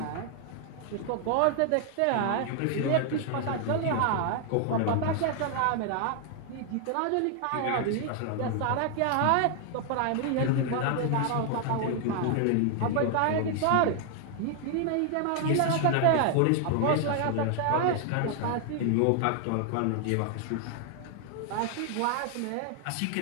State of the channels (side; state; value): both; different; correlation 0.00